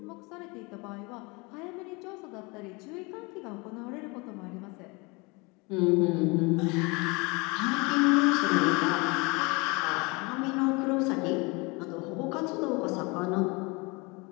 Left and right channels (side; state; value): right; quieter; 27.5 dB